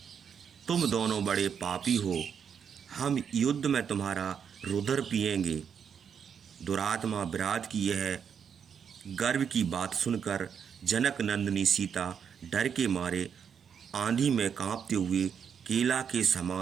तुम दोनों बड़े पापी हो। हम युद्ध में तुम्हारा रुधिर पिएंगे। दुरात्मा विराट की यह गर्व की बात सुनकर जनक नंदिनी सीता डर के मारे आंधी में कांपते हुए केला के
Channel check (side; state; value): left; quieter; 7.4 dB